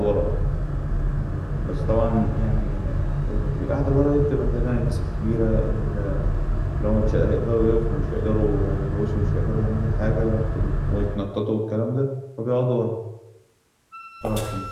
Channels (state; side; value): identical; both; correlation 1.00